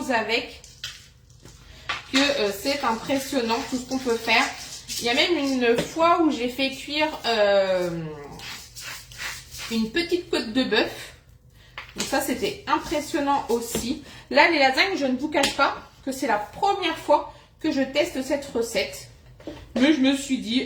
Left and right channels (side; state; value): both; identical; correlation 1.00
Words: avec que c'est impressionnant tout ce qu'on peut faire. Il y a même une fois où j'ai fait cuire une petite côte de bœuf. Donc ça, c'était impressionnant aussi. Là, les lasagnes, je ne vous cache pas que c'est la première fois que je teste cette recette. Mais je me suis